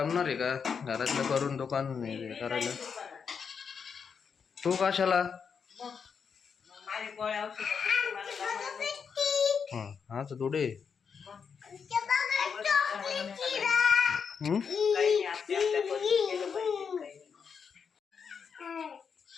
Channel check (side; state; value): right; quieter; 6.3 dB